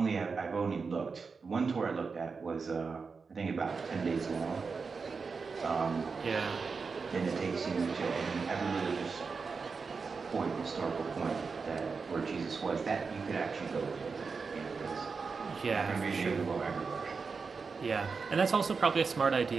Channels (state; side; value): quieter; left; 4.9 dB